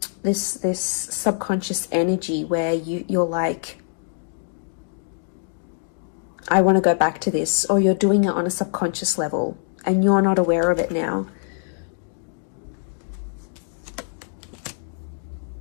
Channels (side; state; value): right; silent; digital silence